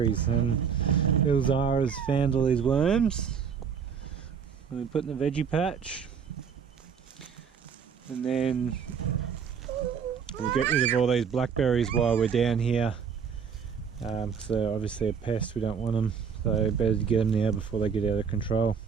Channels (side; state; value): left; quieter; 6.7 dB